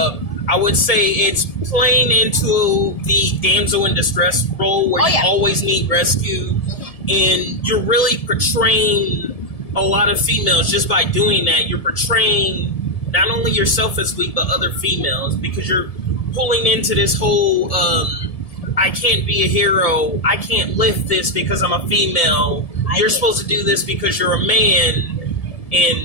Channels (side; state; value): right; late; 1.7 ms